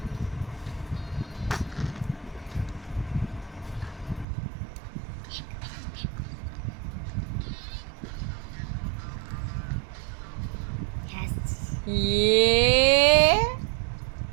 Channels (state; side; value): drops out; left; at 4.2 s